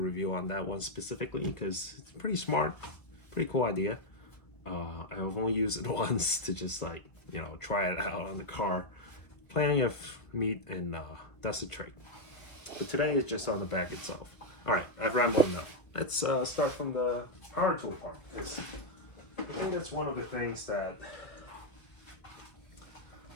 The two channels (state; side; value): late; right; 1.4 ms